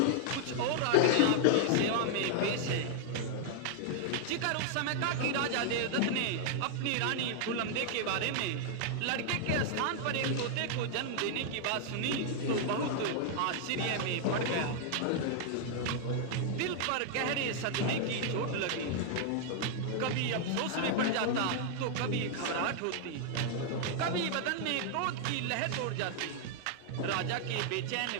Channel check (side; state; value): both; different; correlation 0.00